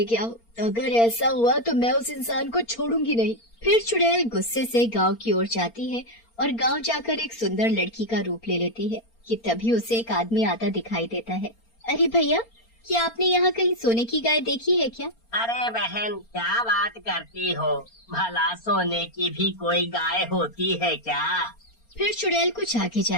गया हो? अगर ऐसा हुआ तो मैं उस इंसान को छोड़ूंगी नहीं। फिर चुड़ैल गुस्से से गांव की ओर जाती है और गांव जाकर एक सुंदर लड़की का रूप ले लेती है कि तभी उसे एक आदमी आता दिखाई देता है। अरे भैया, क्या आपने यहाँ कहीं सोने की गाय देखी है क्या? अरे बहन, क्या बात करती हो? भला सोने की भी कोई गाय होती है क्या? फिर चुड़ैल कुछ आगे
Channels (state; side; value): late; right; 4.3 ms